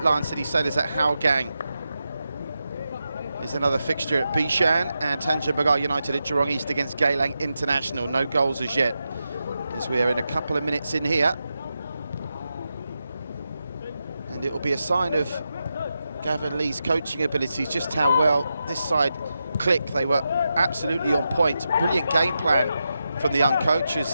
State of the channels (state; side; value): inverted; both; correlation -0.88